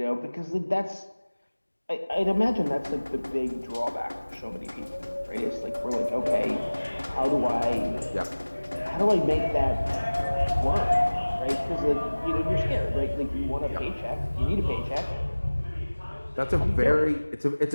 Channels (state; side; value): inverted; both; correlation -1.00